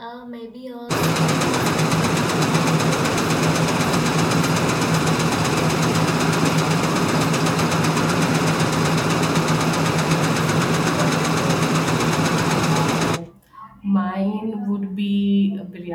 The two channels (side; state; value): both; identical; correlation 1.00